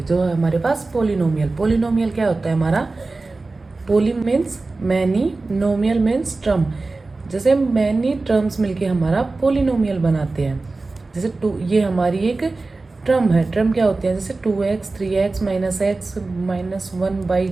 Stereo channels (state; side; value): quieter; left; 3.5 dB